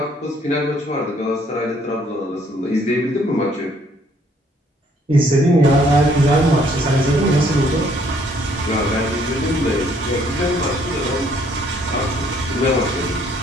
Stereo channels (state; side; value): normal; both; correlation 0.64